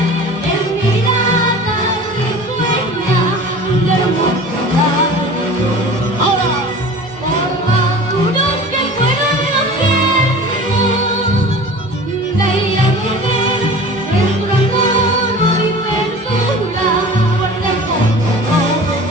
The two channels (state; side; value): normal; both; correlation 0.39